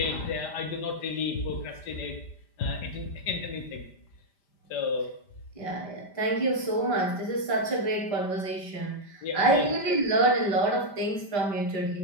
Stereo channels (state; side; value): late; right; 5.0 ms